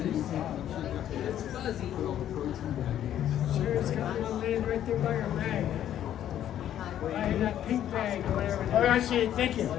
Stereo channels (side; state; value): right; quieter; 11.1 dB